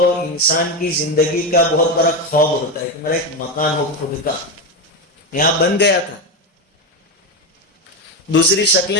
انسان کی زندگی کا بہت بڑا خواب ہوتا ہے کہ میرا ایک مکان ہو خود کا. یہاں بن گیا تھا. دوسری شکلیں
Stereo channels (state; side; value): normal; both; correlation 0.13